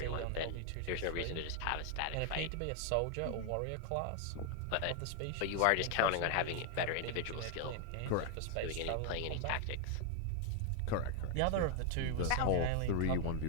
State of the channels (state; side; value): different; both; correlation 0.00